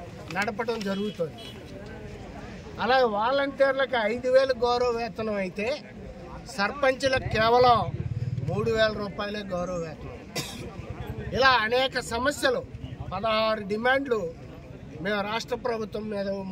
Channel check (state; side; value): identical; both; correlation 1.00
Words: నడపడం జరుగుతుంది. అలాగే వాలంటీర్లకు 5,000 గౌరవ వేతనం అయితే సర్పంచులకు కేవలం 3,000 రూపాయలే గౌరవ వేతనం. ఇలా అనేక సమస్యలు, 16 డిమాండ్లు మేము రాష్ట్ర ప్రభుత్వం మీద